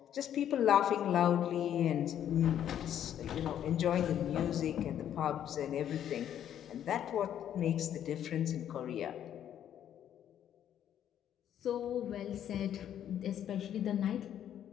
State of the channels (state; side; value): quieter; right; 10.2 dB